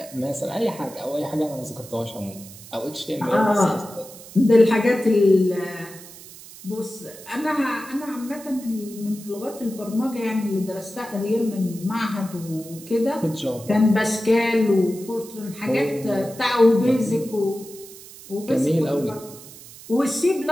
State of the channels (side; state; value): right; noise; hiss, 17 dB below the sound